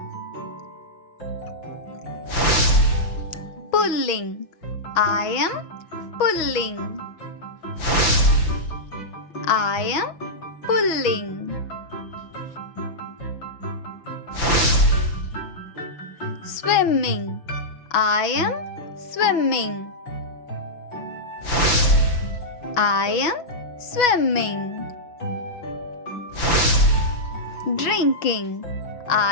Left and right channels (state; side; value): late; right; 6.2 ms